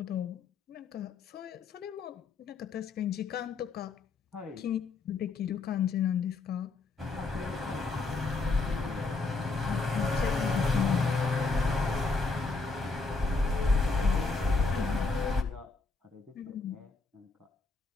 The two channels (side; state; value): right; quieter; 3.9 dB